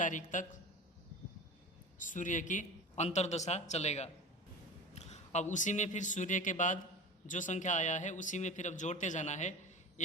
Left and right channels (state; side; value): normal; both; correlation 0.33